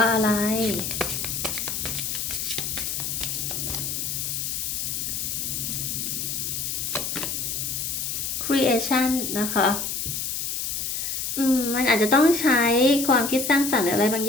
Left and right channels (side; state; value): left; noise; hiss, 2 dB below the sound